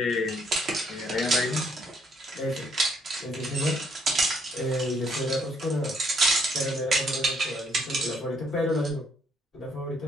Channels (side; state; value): both; normal; correlation 0.69